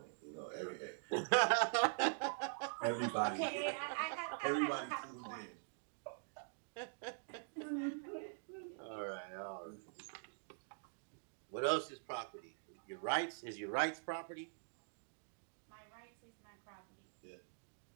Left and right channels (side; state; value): left; silent; digital silence